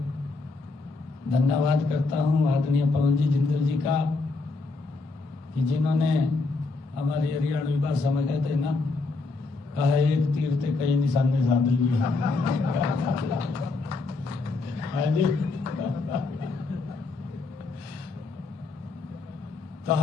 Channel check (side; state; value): right; quieter; 3.7 dB